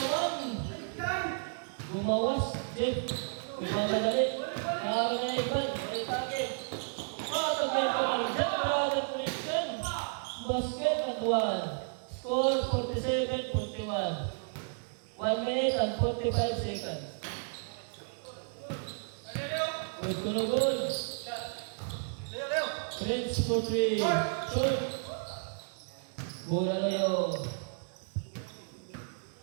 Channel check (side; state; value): left; silent; digital silence